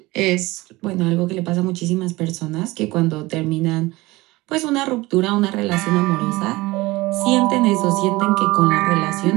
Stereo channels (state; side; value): quieter; left; 20.7 dB